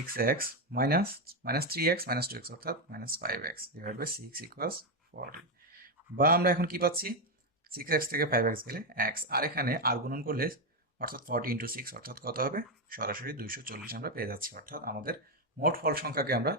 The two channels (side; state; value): both; normal; correlation 0.06